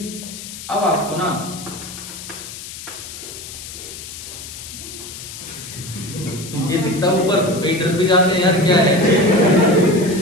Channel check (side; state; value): left; noise; hiss, 12 dB below the sound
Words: अब आपको ना ये दिखता ऊपर, कई डर भी जाते हैं यार क्या है,